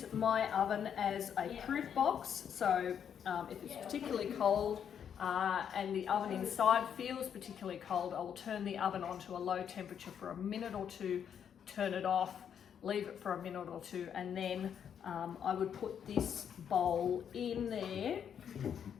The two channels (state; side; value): quieter; right; 8.3 dB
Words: my oven as a proof box. So if it's particularly cold and the oven inside feels particularly cold, I will turn the oven on to a low temperature for a minute or two, turn it off, leave it for a minute or two, and then I would put this bowl in there,